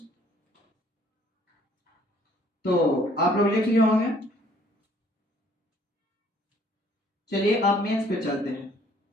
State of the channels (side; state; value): both; normal; correlation 0.60